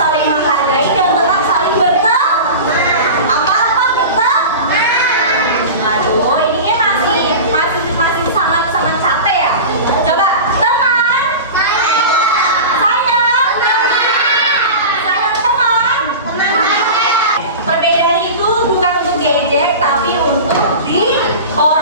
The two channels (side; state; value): both; inverted; correlation -0.31